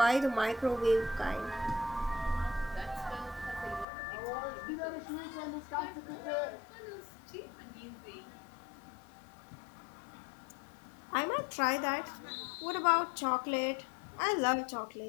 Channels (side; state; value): right; drops out; at 3.9 s